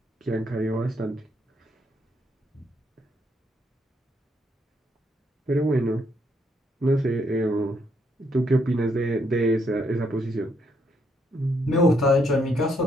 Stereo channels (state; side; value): normal; both; correlation 0.73